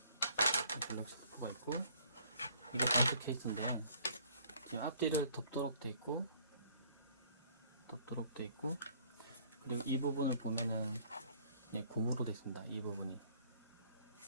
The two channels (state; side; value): inverted; both; correlation -0.59